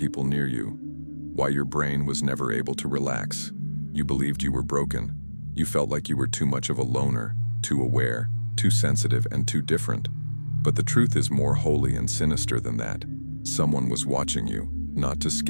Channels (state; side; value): inverted; both; correlation -1.00